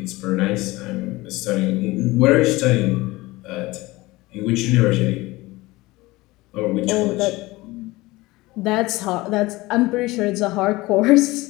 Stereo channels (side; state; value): right; quieter; 20.4 dB